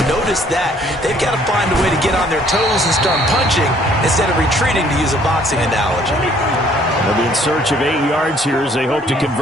noticed that. They've got to find a way to get on their toes and start punching instead of retreating, to use a boxing analogy. They'll be in search of 8 yards here as they hope to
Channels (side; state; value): both; normal; correlation 0.61